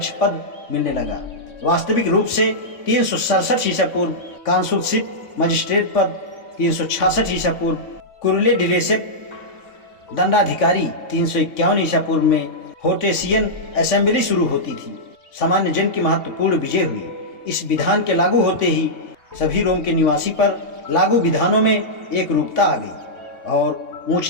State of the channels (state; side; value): late; right; 3.5 ms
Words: पद मिलने लगा। वास्तविक रूप से 367 ईसा पूर्व कांसुलशिप मजिस्ट्रेट पद, 366 ईसा पूर्व कुरले डिलेसेप दंडाधिकारी, 351 ईसा पूर्व में होटेसियन असेंबली शुरू होती थी। सामान्य जन की महत्वपूर्ण विजय हुई। इस विधान के लागू होते ही सभी रोम के निवासी पर लागू विधानों में एक रूपता आ गई और